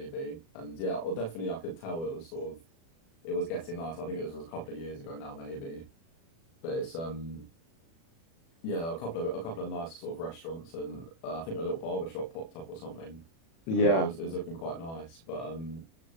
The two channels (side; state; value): right; late; 36 ms